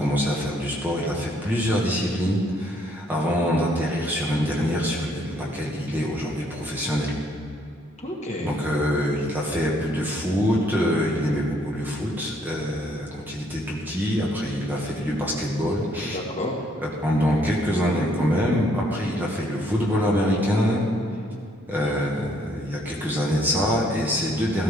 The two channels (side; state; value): both; normal; correlation 0.67